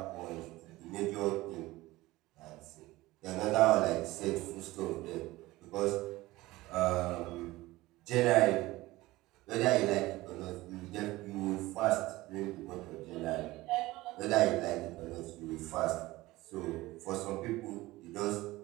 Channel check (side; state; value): left; quieter; 18.8 dB